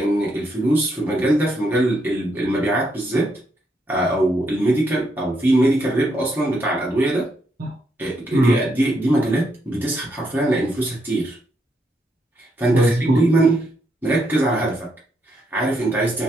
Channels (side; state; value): both; normal; correlation 0.78